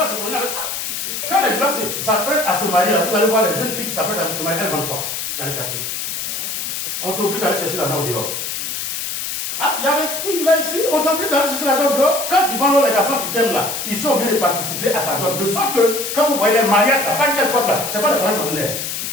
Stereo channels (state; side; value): noise; left; hiss, 4 dB below the sound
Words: se mouler avec ça. Quand les gens s'apprêtent à se marier, vous allez voir les jeunes filles qui s'apprêtent à se marier, elles vendent quoi dans les quartiers? On t'oblige d'aller chercher l'argent au dehors. Ah, il y avait une fille là ici, on t'oblige d'aller chercher l'argent au dehors. Quand ils vendent les garçons qui t'aiment là, ils sont obligés de participer à ta dot. De sorte que, quand vous voyez les mariages, là, pas une telle porte là, c'est pas le mariage ordinaire.